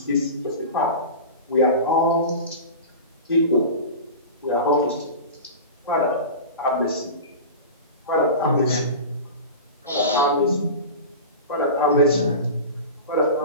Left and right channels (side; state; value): both; inverted; correlation -0.30